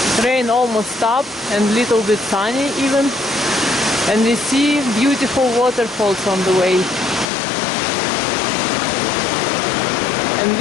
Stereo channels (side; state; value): right; drops out; at 7.2 s